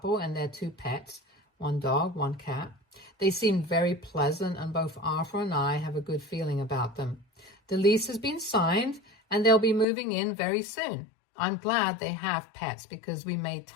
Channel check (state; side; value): drops out; right; at 9.9 s